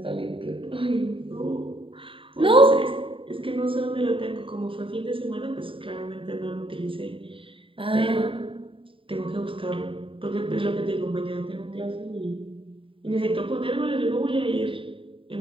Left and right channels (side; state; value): left; late; 0.25 ms